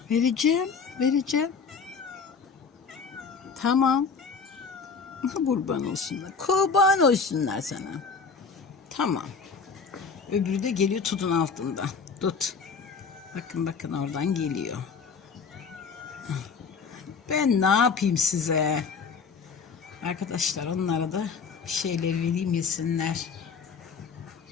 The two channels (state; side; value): quieter; right; 5.4 dB